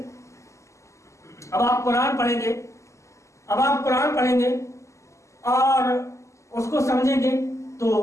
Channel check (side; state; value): right; late; 0.14 ms